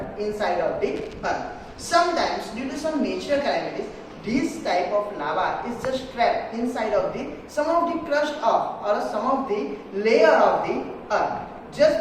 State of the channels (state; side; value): identical; both; correlation 1.00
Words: inside of the earth. Sometimes due to some natural calamities, this type of lava is just trapped inside of some of the crust of or some of the layer of the earth. Just